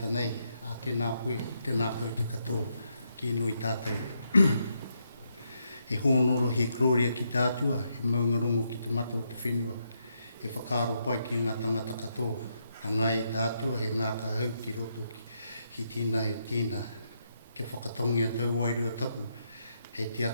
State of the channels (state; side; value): inverted; both; correlation -0.79